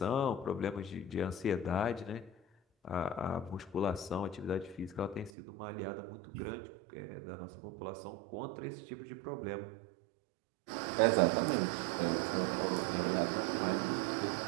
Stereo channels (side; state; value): left; drops out; at 5.3 s